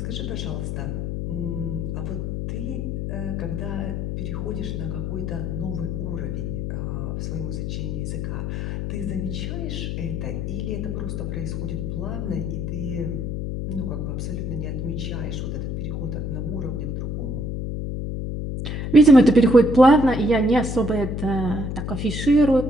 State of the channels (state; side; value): noise; left; hum, 3 dB below the sound